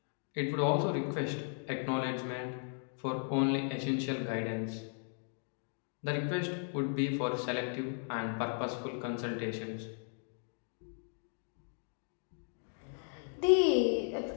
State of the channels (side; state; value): right; silent; 54 dB below the other